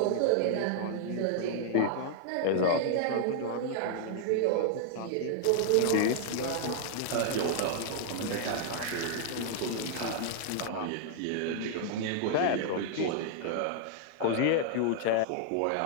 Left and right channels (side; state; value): both; different; correlation -0.01